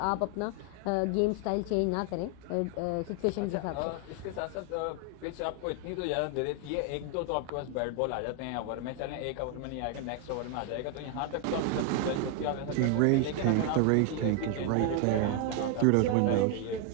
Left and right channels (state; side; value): different; both; correlation 0.00